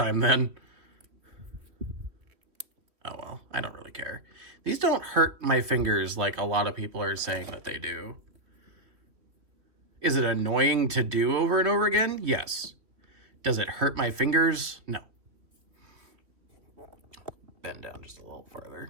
then. Oh well, I don't really care. These don't hurt my fingers like a lot of people are saying that they do. Is it annoying to do over and over again? Yes. Does it hurt my fingers? No. Bend down just a little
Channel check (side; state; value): left; late; 3.0 ms